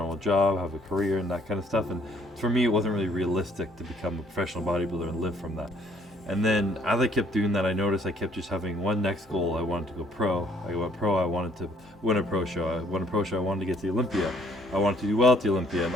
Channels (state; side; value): normal; both; correlation 0.62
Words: job, have a career, and that kind of stuff, and for me it wasn't really realistic to become a professional bodybuilder and live from that. And then as I kept doing that, I noticed I kept just having one next goal. I wanted to go pro. I went pro, I wanted to win a pro show. I won a pro show, I wanted to get to the Olympia. I wanted to do well at the Olympia. And